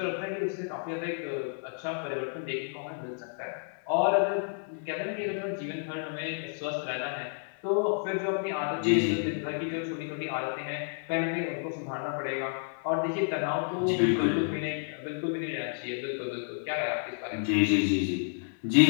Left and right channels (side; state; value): right; silent; digital silence